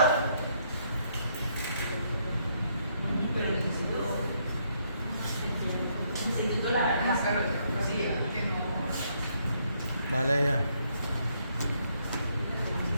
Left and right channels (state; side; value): inverted; both; correlation -0.72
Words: pero necesito la Dale ya.